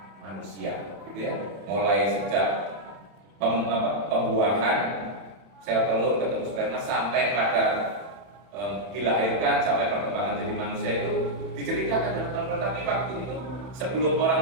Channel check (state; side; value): late; left; 31 ms